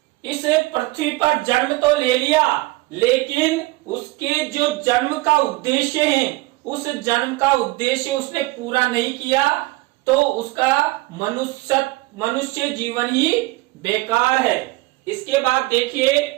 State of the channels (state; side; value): quieter; left; 21.3 dB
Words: इस पृथ्वी पर जन्म तो ले लिया, लेकिन उसके जो जन्म का उद्देश्य है, उस जन्म का उद्देश्य उसने पूरा नहीं किया, तो उसका मनुष्य जीवन ही बेकार है। इसके बाद देखिए,